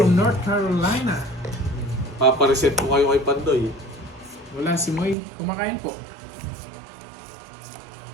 North Carolina. papa-reset mo kayo kay Pandoy. Wala si Moy. Kumakain po.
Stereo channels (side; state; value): left; drops out; at 5.2 s